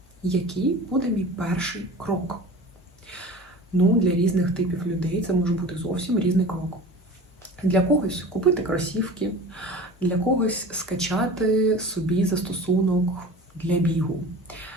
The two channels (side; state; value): both; normal; correlation 0.38